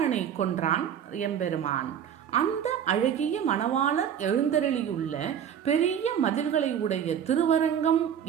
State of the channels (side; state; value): left; quieter; 8.9 dB